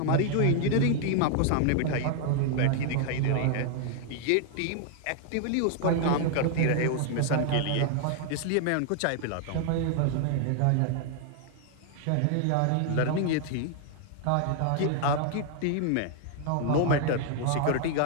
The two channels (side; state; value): both; different; correlation 0.00